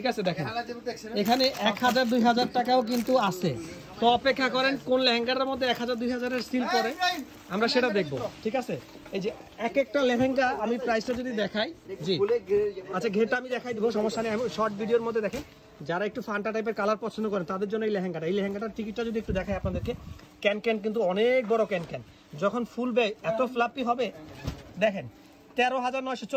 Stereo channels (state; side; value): identical; both; correlation 1.00